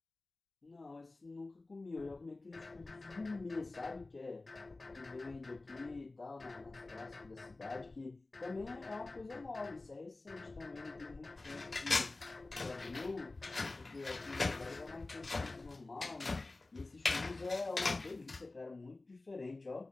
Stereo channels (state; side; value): quieter; right; 3.2 dB